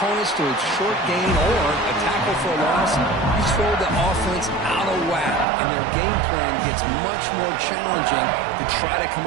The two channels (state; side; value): drops out; left; at 5.5 s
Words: to a short gain or a tackle for a loss, you throw the offense out of whack, and their game plan gets much more challenging to try to come